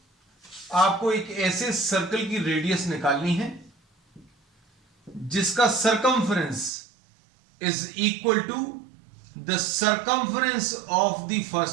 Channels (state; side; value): drops out; left; at 6.7 s